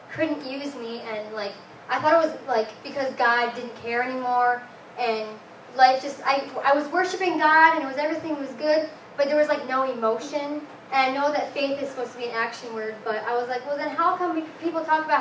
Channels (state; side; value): identical; both; correlation 1.00